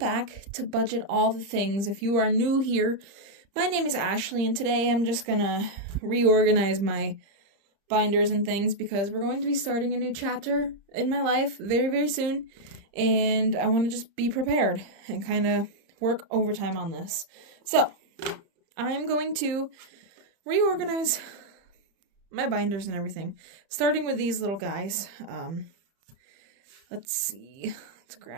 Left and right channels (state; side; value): late; left; 30 ms